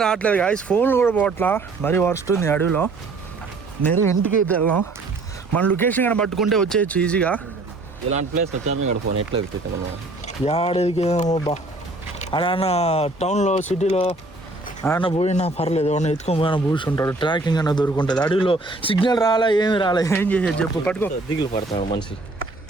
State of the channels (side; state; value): left; quieter; 3.1 dB